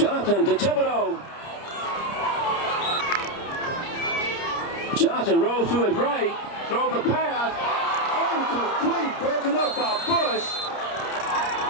to Thibodeau. Johnson rolls to his right, throws the pass, incomplete, broken up by Bush.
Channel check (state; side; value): late; right; 30 ms